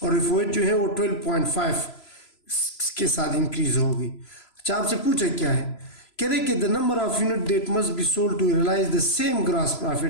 और एफओएच जो है वो 12.5 के साथ इंक्रीज होगी। अच्छा, आपसे पूछा क्या है? कह रहे कि the number of unit that must be sold to realise the same gross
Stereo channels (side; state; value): right; late; 3.0 ms